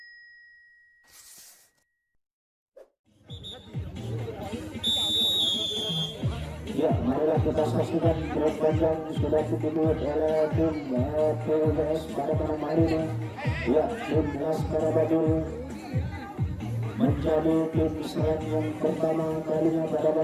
Ya, marilah kita saksikan pertandingan sudah dibuat oleh tim PWS pada malam hari ini. Ya, tim Laskar Abil menjadi tim serang yang pertama kalinya pada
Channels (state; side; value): identical; both; correlation 1.00